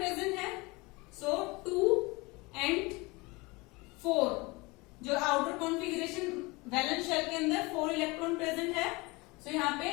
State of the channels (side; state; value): right; quieter; 24.8 dB